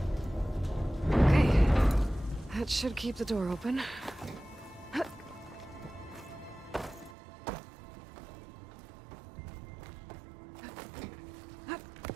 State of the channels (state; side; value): drops out; left; at 7.2 s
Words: That should keep the door open.